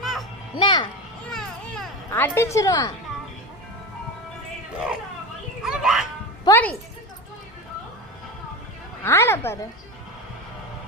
என்ன அடிச்சிருவான். போடி ஆள பாரு.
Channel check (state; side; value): normal; both; correlation 0.23